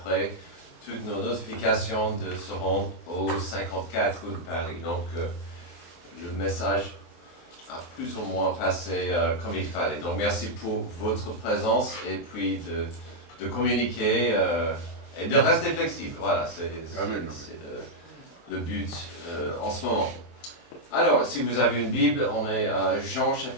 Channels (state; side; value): late; right; 23 ms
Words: toutes nos notifications de se rendre au 54 rue de Paris. Donc, le message a plus ou moins passé comme il fallait. Donc, merci pour votre présence et puis de communiquer et de rester flexible. Voilà, c'est le but en ce moment. Alors, si vous avez une Bible, on est à Jean